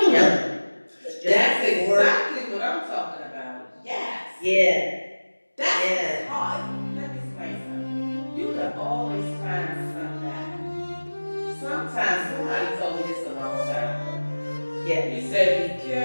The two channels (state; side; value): inverted; both; correlation -1.00